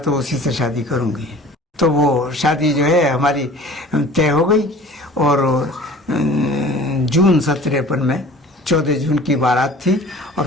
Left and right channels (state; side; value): normal; both; correlation 0.45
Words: उसी से शादी करूँगी। तो वो शादी जो है हमारी तय हो गई और जून 1953 में 14 जून की बारात थी